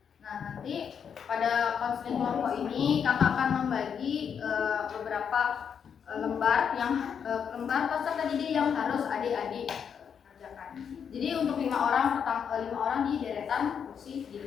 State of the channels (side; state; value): right; quieter; 7.4 dB